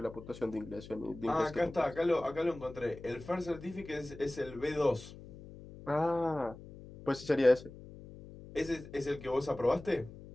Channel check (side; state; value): left; noise; hum, 16 dB below the sound